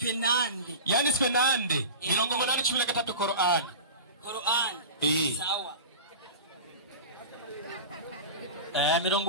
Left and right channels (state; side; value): inverted; both; correlation -0.31